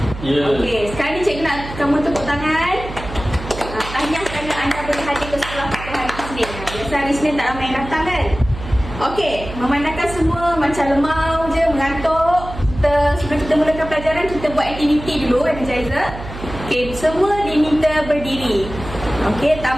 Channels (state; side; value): noise; right; hum, 11 dB below the sound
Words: Ya. Okey, sekarang ni cikgu nak kamu tepuk tangan. Tahniah kerana anda boleh hadir ke sekolah pada hari Isnin. Biasa hari Isnin tak ramai yang datang kan? Okey, memandangkan semua macam lemau je, mengantuk. Sebelum kita mulakan pelajaran, kita buat aktiviti dulu, energizer. Okey, semua diminta berdiri. Okey,